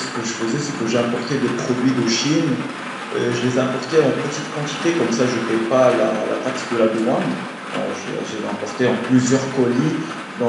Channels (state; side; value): identical; both; correlation 1.00